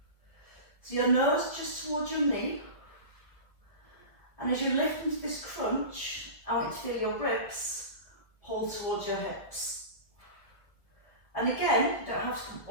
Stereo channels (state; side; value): late; right; 1.4 ms